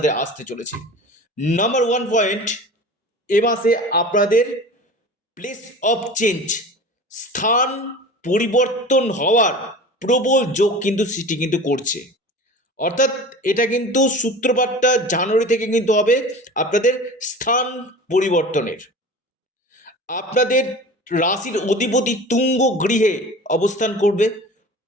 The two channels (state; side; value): normal; both; correlation 0.37